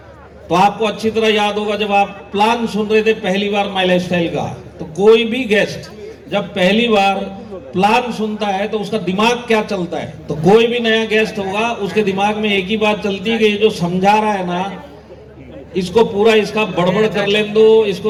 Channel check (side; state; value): both; identical; correlation 1.00